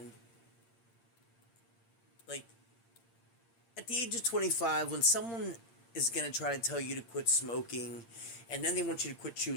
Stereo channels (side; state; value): right; late; 8.8 ms